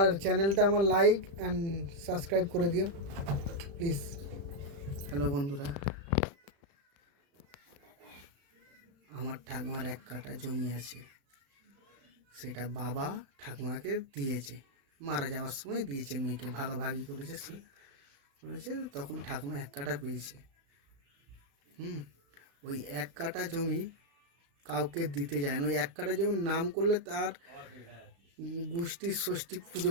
চ্যানেলটা আমার লাইক অ্যান্ড সাবস্ক্রাইব করে দিও প্লিজ। হ্যালো বন্ধুরা, আমার ঠাকুমার 1 কাঠা জমি আছে, সেটা বাবা ঠাকুমাকে দিয়েছে, মারা যাওয়ার সময় দিয়েছে, মেয়েকে ভাগাভাগি করেছে, তখন ঠাকুমা 1 কাঠা পেয়েছে। ওই 1 কাঠা জমি কাউকে দিতে যায় না। ওই 1 কাঠা জমির নাম করলে তার গোষ্ঠীর ষষ্ঠী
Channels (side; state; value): left; late; 35 ms